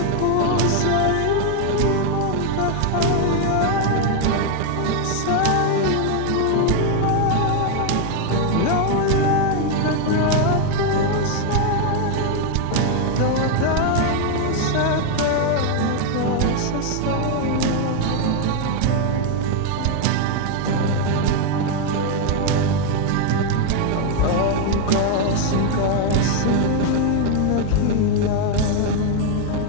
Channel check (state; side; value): different; both; correlation 0.01